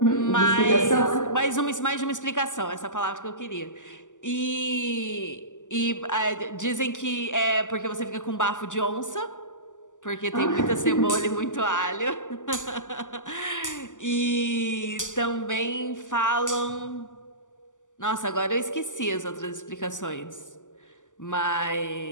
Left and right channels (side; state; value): right; late; 0.87 ms